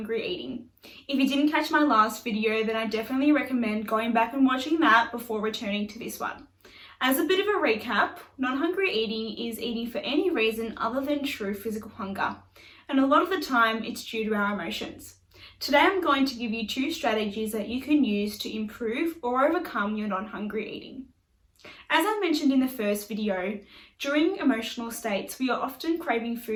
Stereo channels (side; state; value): both; identical; correlation 1.00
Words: eating. If you didn't catch my last video, then I definitely recommend going back and watching that before returning to this one. As a bit of a recap, non-hungry eating is eating for any reason other than true physical hunger, and a lot of the time it's due to our emotions. Today I'm going to give you 2 strategies that you can use to improve or overcome your non-hungry eating. As I mentioned in the first video, during emotional states, we are often craving